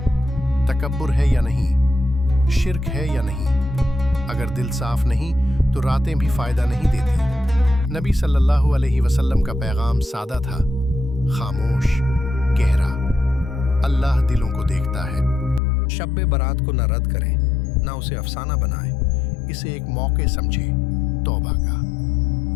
تکبر ہے یا نہیں، شرک ہے یا نہیں۔ اگر دل صاف نہیں تو راتیں بھی فائدہ نہیں دیتی۔ نبی صلی اللہ علیہ وسلم کا پیغام سادہ تھا، خاموش، گہرا۔ اللہ دلوں کو دیکھتا ہے۔ شب برات کو نہ رد کریں، نہ اسے افسانہ بنائیں، اسے ایک موقع سمجھیں، توبہ کا،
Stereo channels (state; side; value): drops out; right; at 15.6 s